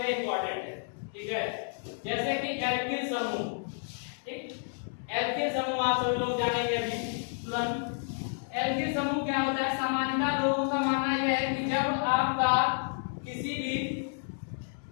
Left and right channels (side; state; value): right; silent; 57 dB below the other